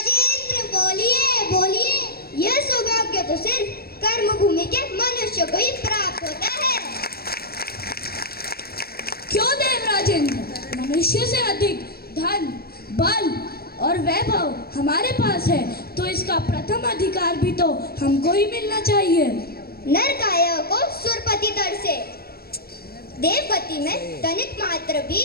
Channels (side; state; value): right; late; 0.45 ms